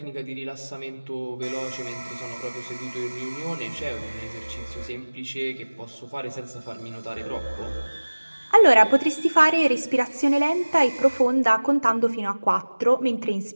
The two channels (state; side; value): inverted; both; correlation -1.00